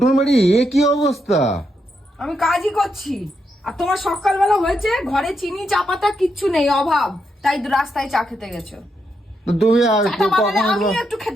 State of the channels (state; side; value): normal; both; correlation 0.82